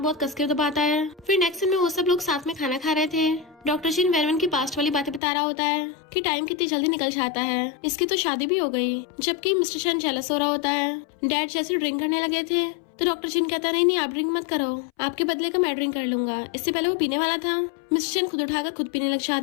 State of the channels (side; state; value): right; drops out; at 5.2 s